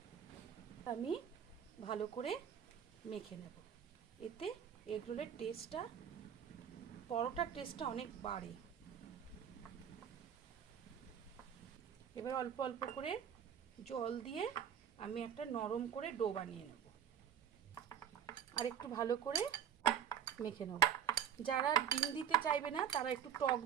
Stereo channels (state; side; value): quieter; left; 8.8 dB